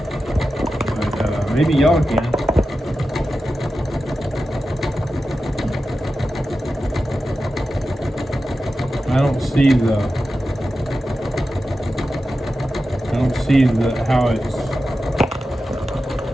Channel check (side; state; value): both; normal; correlation 0.92